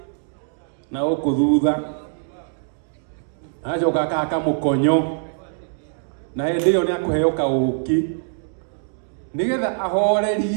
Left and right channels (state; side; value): silent; left; digital silence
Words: na gũkũ thutha, acoka akahaka mũkonyo, na hĩndĩ ĩyo nĩ akũheo kaũki nĩgetha